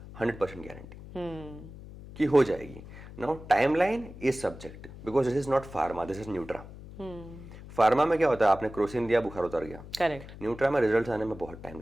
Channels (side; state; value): left; noise; hum, 15 dB below the sound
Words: 100% गारंटी कि हो जाएगी. Now timeline is subject because this is not pharma, this is Nutra. Pharma में क्या होता है, आपने क्रोसिन दिया, बुखार उतर गया. Correct. न्यूट्रा में रिजल्ट आने में बहुत टाइम